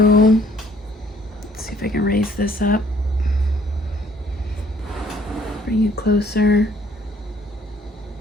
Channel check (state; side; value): normal; both; correlation 0.61